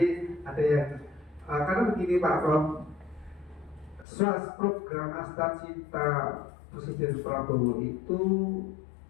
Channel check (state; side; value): drops out; right; at 4.0 s